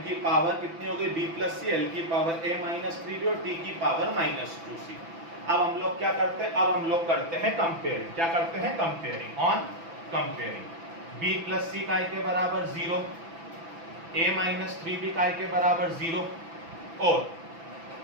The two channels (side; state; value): left; late; 6.0 ms